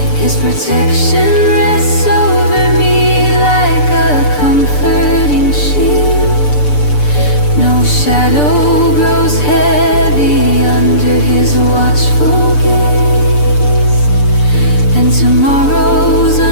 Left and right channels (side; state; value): right; late; 6.8 ms